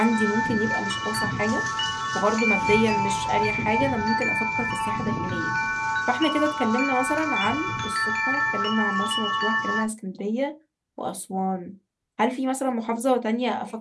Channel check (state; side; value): identical; both; correlation 1.00